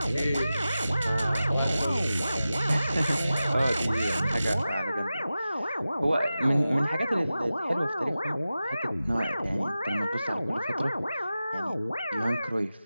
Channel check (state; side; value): inverted; both; correlation -0.94